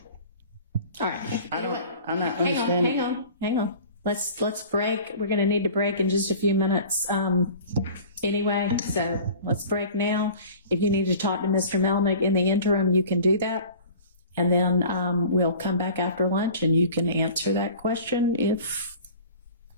All right. I'm not understanding. Hang on. Let's break. We're going to need to break in just a few minutes anyway. So let's break now. If you need to talk to Mr. Melnick in the interim, you can do that. And then we'll come back after lunch and you can answer that question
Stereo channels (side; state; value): both; inverted; correlation -0.43